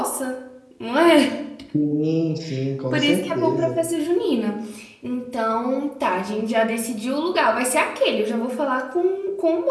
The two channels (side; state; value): both; identical; correlation 1.00